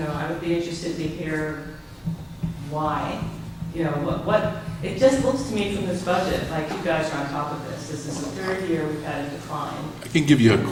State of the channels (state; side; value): identical; both; correlation 1.00